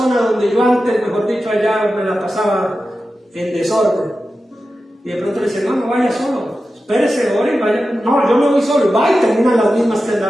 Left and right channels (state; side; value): normal; both; correlation 0.92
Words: donde yo antes, mejor dicho, allá me la pasaba en desorden. Y de pronto le dice, no vaya solo, espérese, ore y vaya. No, yo me voy solo, y va y terminan las mismas que